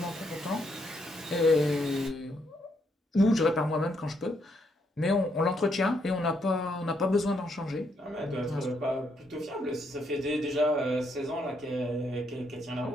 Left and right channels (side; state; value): both; normal; correlation 0.75